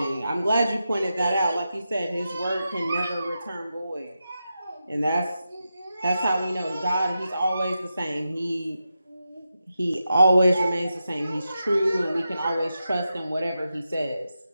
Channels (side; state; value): both; inverted; correlation -0.89